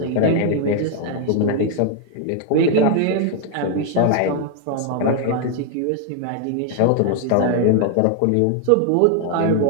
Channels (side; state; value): both; different; correlation 0.00